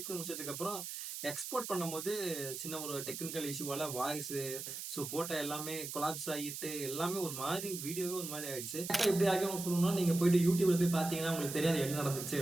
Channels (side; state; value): right; noise; hiss, 7 dB below the sound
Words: பண்ணி முடிச்சதுக்கப்புறம் எக்ஸ்போர்ட் பண்ணும்போது சின்ன ஒரு டெக்னிக்கல் இஷ்யூவால வாய்ஸு போட்ட எல்லாமே கொலாப்ஸ் ஆகிட்டு எல்லாமே ஒரு மாதிரி வீடியோவே ஒரு மாதிரி ஆயிடுச்சு. எப்படி ஆகும் சொல்லணும்னா, நீங்க போயிட்டு யூடியூப்ல போய் பார்த்தீங்கன்னா உங்களுக்கு தெரியாது என்ன நடந்துச்சு